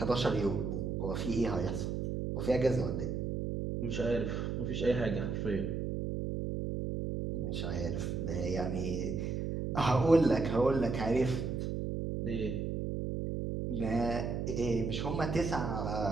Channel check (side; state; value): right; noise; hum, 2 dB below the sound